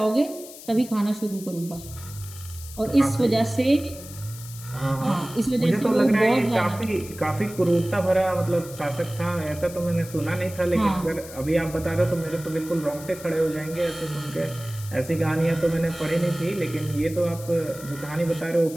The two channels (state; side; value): noise; left; hiss, 16 dB below the sound